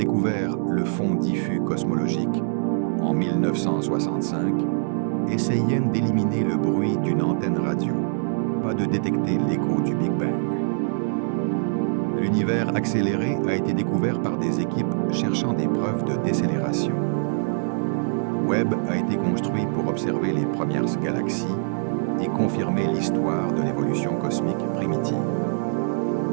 le fond diffus cosmologique en 1965, essayaient d'éliminer le bruit d'une antenne radio, pas de détecter l'écho du Big Bang. L'univers accéléré a été découvert par des équipes cherchant des preuves de décélération. Webb a été construit pour observer les premières galaxies et confirmer l'histoire de l'évolution cosmique primitive.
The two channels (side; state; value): left; silent; digital silence